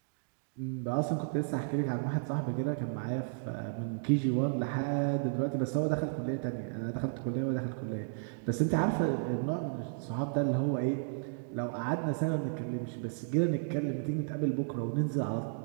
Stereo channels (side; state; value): left; silent; digital silence